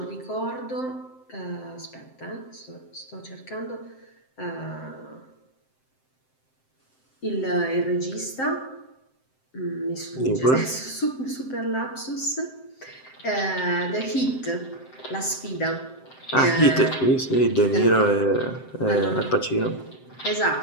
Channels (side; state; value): right; late; 7.7 ms